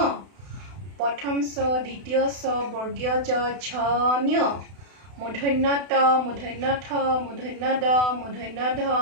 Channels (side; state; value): left; late; 32 ms